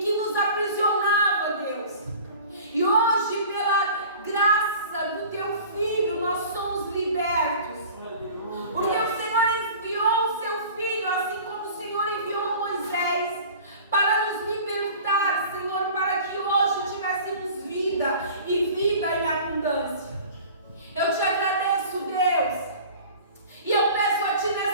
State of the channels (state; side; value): inverted; both; correlation -0.43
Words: nos aprisionava, Deus. E hoje, pela graça do Teu Filho, nós somos libertos. Porque o Senhor enviou o Seu Filho, assim como o Senhor enviou Moisés, para nos libertar, Senhor, para que hoje tivéssemos vida e vida em abundância. Eu Te agradeço, Deus, e eu peço a Ti